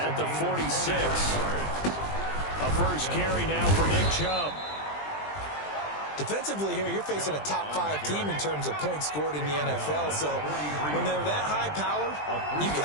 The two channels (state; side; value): late; right; 20 ms